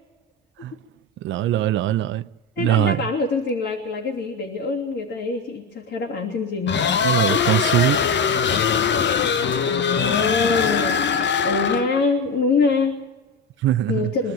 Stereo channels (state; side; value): normal; both; correlation 0.18